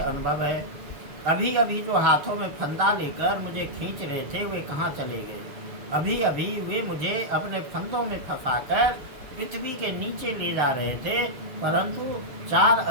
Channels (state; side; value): late; left; 6.9 ms